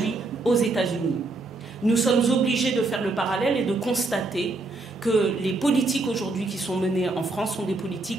aux États-Unis. Nous sommes obligés de faire le parallèle et de constater que les politiques aujourd'hui qui sont menées en France sont des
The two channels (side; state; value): left; quieter; 3.2 dB